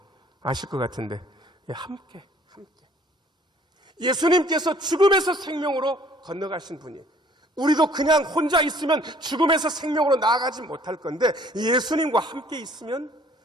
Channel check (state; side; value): normal; both; correlation 0.57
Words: 아실 것 같은데. 함께. 예수님께서 죽음에서 생명으로 건너가신 분이, 우리도 그냥 혼자 있으면 죽음에서 생명으로 나아가지 못할 건데 예수님과 함께 있으면